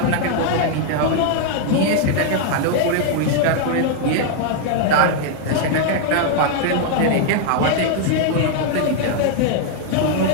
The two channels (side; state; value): both; different; correlation 0.00